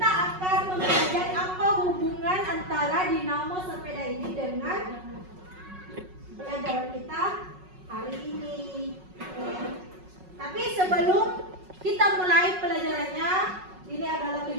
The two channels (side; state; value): left; late; 5.4 ms